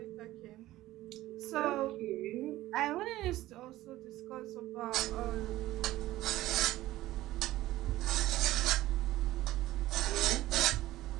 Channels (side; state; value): left; quieter; 15.9 dB